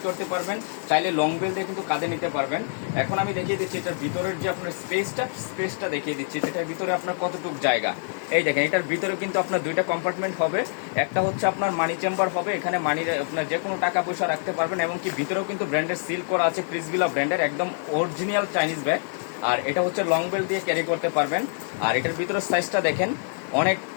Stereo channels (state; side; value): silent; right; 60 dB below the other